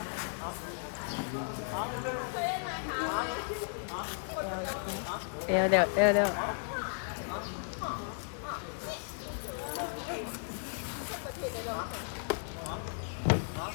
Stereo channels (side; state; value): right; silent; digital silence